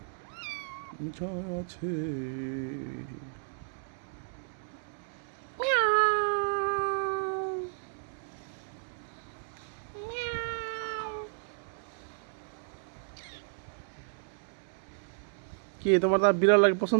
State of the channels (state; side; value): silent; left; digital silence